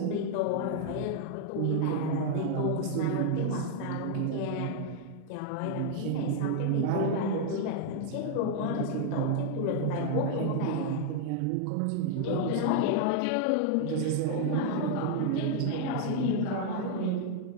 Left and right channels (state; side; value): different; both; correlation 0.00